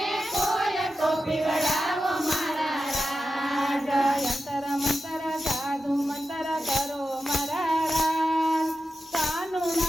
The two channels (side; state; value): both; normal; correlation 0.91